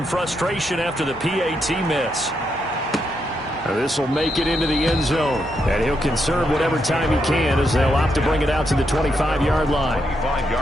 frustration after the PAT miss. This will make it into the end zone, and he'll conserve whatever time he can as they'll opt to bring it out to the 25-yard line.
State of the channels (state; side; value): normal; both; correlation 0.80